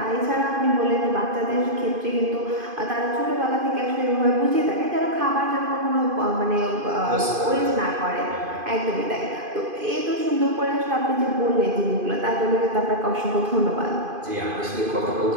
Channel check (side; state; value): left; late; 2.5 ms